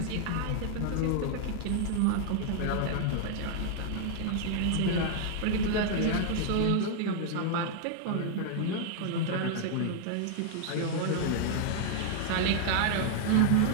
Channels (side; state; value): both; different; correlation -0.01